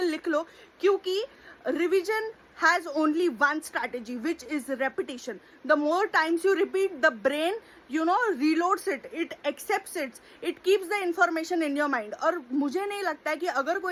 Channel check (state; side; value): identical; both; correlation 1.00